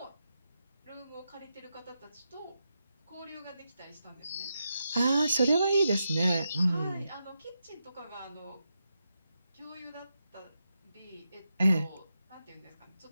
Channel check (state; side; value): inverted; both; correlation -0.86